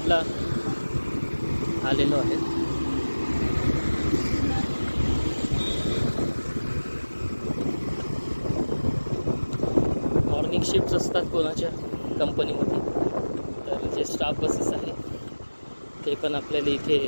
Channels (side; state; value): both; inverted; correlation -1.00